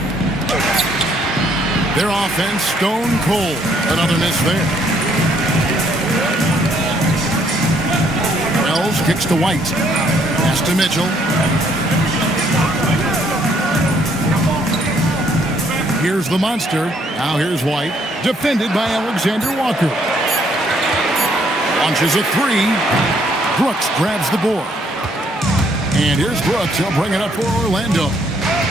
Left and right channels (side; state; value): both; normal; correlation 0.67